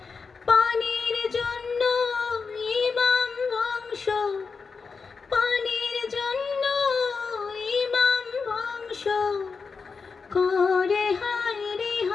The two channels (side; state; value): right; quieter; 5.0 dB